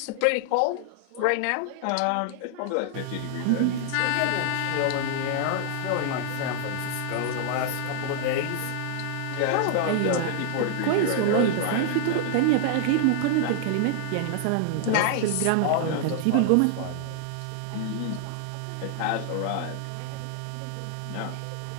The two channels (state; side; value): different; both; correlation 0.00